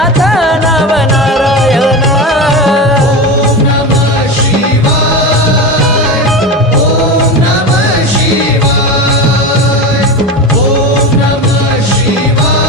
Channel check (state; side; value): normal; both; correlation 0.23